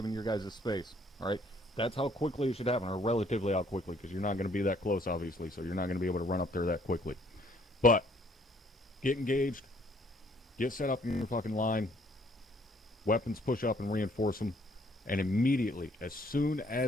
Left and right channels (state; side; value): normal; both; correlation 0.64